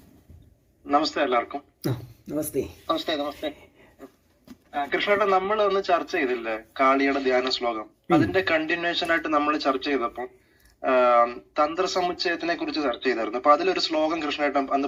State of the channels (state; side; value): identical; both; correlation 1.00